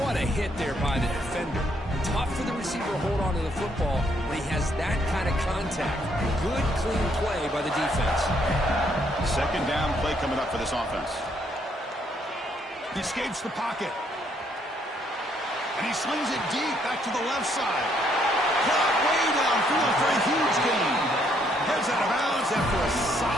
a hit there by the defender. Tough for the receiver to hold on to the football when he has that kind of contact. Good, clean play by the defense. Second down play coming up for this offense. He escapes the pocket. And he slings it deep back to the left side. Caught way downfield for a huge gain. Heads out of bounds after a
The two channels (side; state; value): both; normal; correlation 0.70